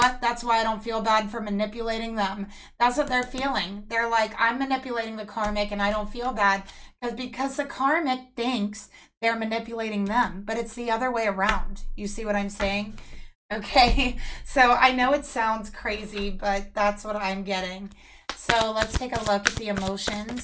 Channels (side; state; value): both; identical; correlation 1.00